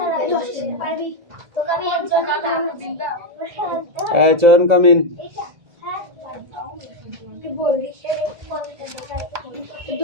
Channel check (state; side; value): late; left; 2.0 ms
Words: নেই পারবি তোকে আমি একজন চয়ন কামিন। বলবি 10